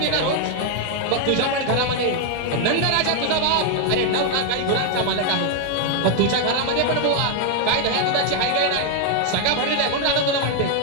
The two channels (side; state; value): both; different; correlation 0.00